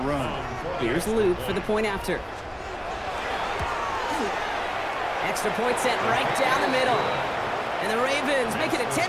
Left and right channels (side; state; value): both; identical; correlation 1.00